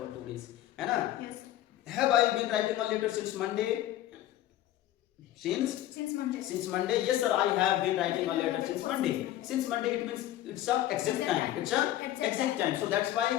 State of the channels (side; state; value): right; quieter; 13.5 dB